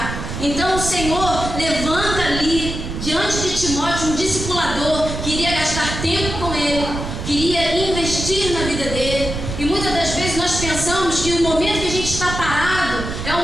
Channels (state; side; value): noise; right; rumble, 6 dB below the sound